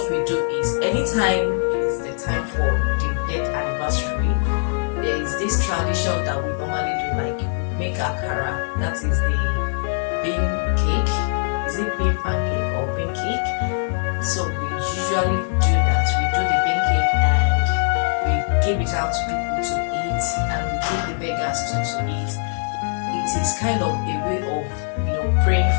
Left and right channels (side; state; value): right; silent; digital silence